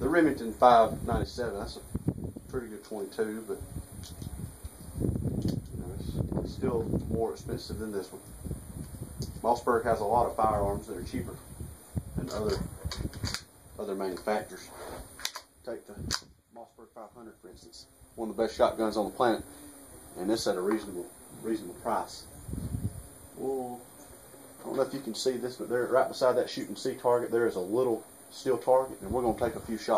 Remington 597, that's a pretty good 22, but it's still more expensive than this one. Mossberg has a lot of firearms that are cheaper than other manufacturers. Take the Mossberg 500 for instance, one of the best shotguns on the planet, and this at a reasonable price. Well, I don't know if you can see this, but there, right beside that shoot and see target, there is a little steel target, and we're going to take a few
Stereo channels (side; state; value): both; identical; correlation 1.00